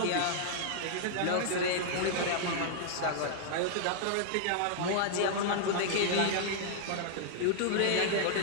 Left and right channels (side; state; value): both; different; correlation -0.01